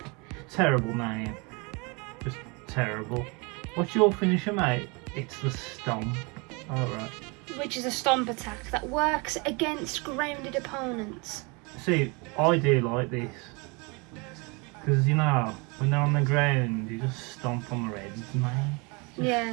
terrible name. Just terrible. What's your finisher, mate? It's the stomp. Alright. Which is a stomp attack that works against grounded opponents. See, I do like this. Because, you know, when they're on the ground, you just stomp on the reds, mate. Just Yeah.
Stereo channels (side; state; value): left; quieter; 29.5 dB